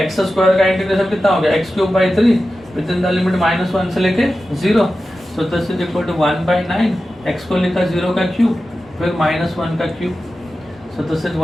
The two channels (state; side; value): normal; both; correlation 0.93